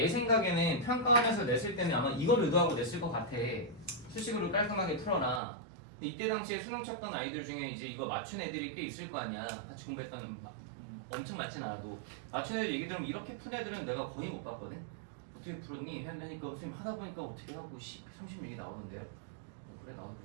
생각에는 평가하면서 냈을 때는 아마 이걸 의도하고 냈을 것 같아. 수식으로 깔끔하게 풀어라. 근데 이때 당시에 수능 쳤던 아이들 중에 이제 이거 맞춘 애들이 꽤 있을 거 아니야. 같이 공부했던 엄청 많진 않아도 맞춘 애들 얘기 들으면 이렇게 푼 애들은 내가 거의 못 봤거든. 어떻게 풀었니? 하니까 선생님 하다 보니까 어떻게 하고 36이 나오던데요. 그래 나도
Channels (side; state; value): left; drops out; at 5.4 s